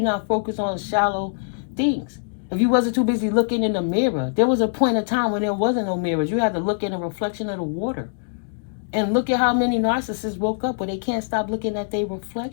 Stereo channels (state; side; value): silent; right; digital silence